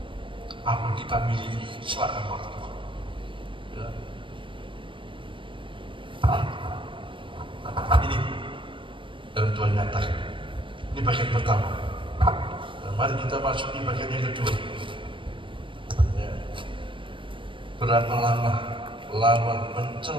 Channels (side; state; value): left; late; 0.25 ms